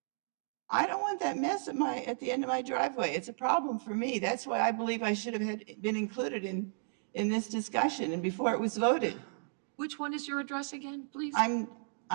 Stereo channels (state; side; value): silent; left; digital silence